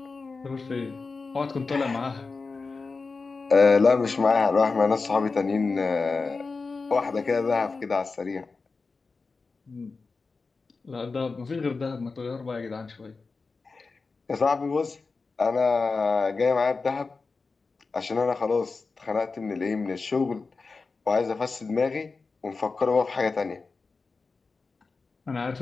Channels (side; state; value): right; quieter; 4.2 dB